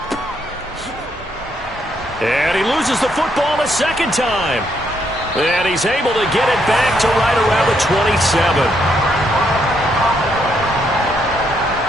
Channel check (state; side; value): normal; both; correlation 0.75